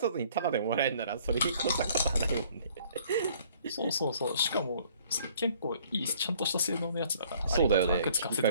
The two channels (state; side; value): inverted; both; correlation -0.58